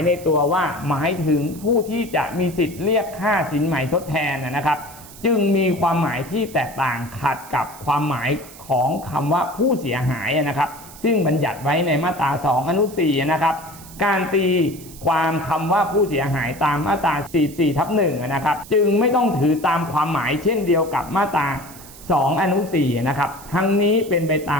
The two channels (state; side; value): noise; right; hiss, 18 dB below the sound